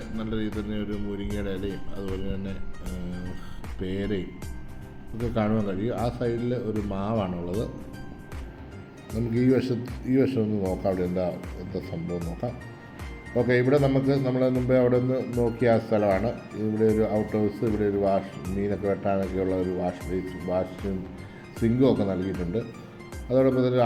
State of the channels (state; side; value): identical; both; correlation 1.00